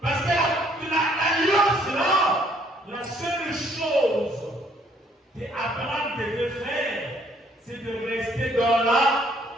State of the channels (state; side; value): normal; both; correlation 0.64